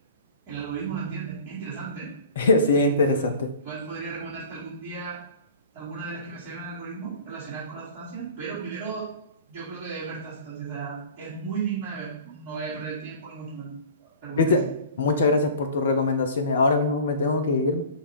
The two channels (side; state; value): both; inverted; correlation -0.41